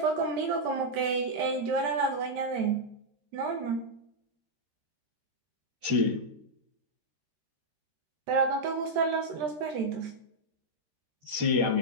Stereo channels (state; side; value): late; left; 13 ms